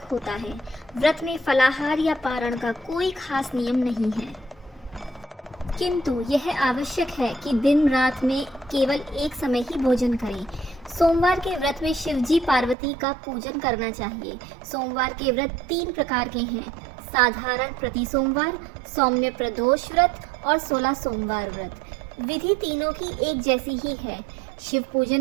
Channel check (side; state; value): left; drops out; at 12.8 s